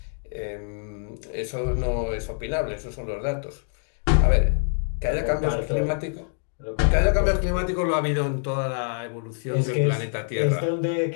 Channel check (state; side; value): silent; right; digital silence